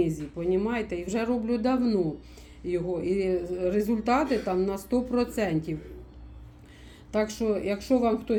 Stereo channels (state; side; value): identical; both; correlation 1.00